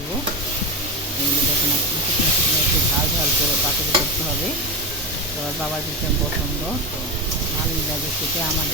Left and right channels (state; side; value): normal; both; correlation 0.18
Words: এই দেখুন শুকনো শুকনো একটু ঝাল ঝাল করে পাতুরি করতে হবে। তো বাবার ভীষণ পছন্দ, তো ভালোই লাগে খেতে,